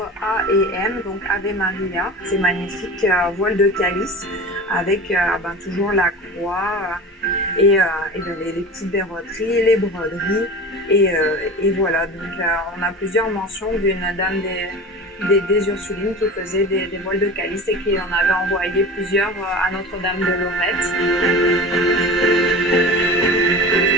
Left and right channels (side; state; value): both; normal; correlation 0.34